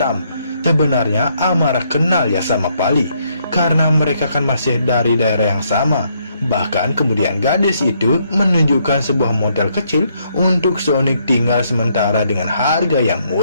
Sebenarnya Amara kenal ya sama Pali, karena mereka kan masih dari daerah yang sama. Bahkan kemudian gadis itu menunjukkan sebuah motel kecil untuk Sonic tinggal sementara dengan harga yang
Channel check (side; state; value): both; inverted; correlation -0.72